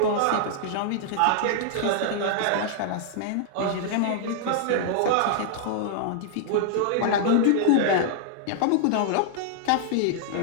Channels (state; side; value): different; both; correlation -0.01